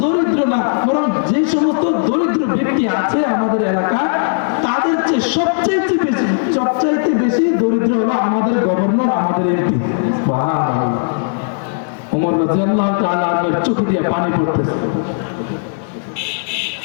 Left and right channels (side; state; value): right; silent; 60 dB below the other